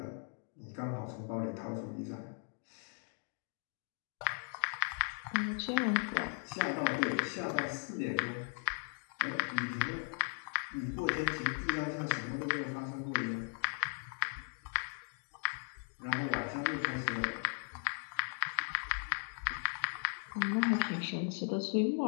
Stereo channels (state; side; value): silent; right; 53 dB below the other